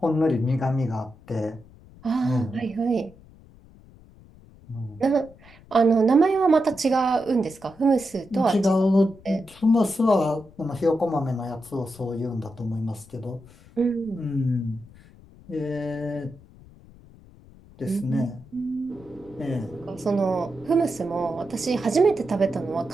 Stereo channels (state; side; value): noise; left; rumble, 23 dB below the sound